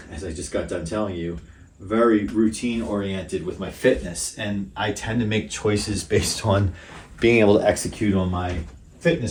as I just got done telling you, very routine oriented with my fitness. And I tend to make choices based on being able to execute on my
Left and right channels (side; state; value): both; identical; correlation 1.00